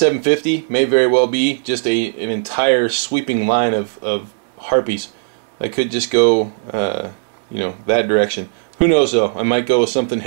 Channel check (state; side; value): silent; left; digital silence